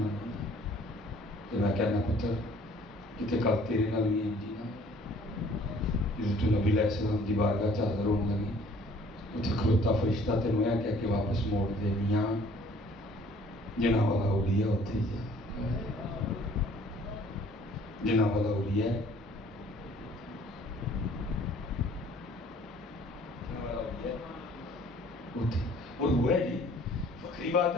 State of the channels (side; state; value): both; normal; correlation 0.56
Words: نے. تو میں کہنا پتر کتے کل تیرے نال بھی جی نا حضرت نبی علیہ السلام دی بارگاہ حاضر ہونے لگی, اتنے کھلوتا فرشتہ تینوں یہ کہہ کے واپس موڑ دے, میاں جنہاں والا اولیاء اتنے ہی جا, جنہاں والا اولیاء اتنے. اور ہوا ہے جی فخری بات